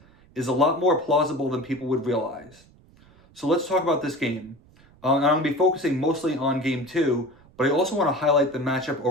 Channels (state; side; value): noise; right; rumble, 28 dB below the sound